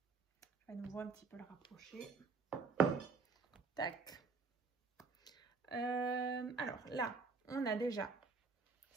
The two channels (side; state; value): left; quieter; 4.5 dB